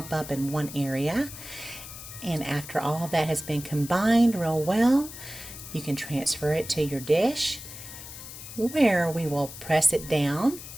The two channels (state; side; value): noise; left; hiss, 13 dB below the sound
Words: up in one area. And after all that has been combined real well, you can transfer it to your dish where we will press it down.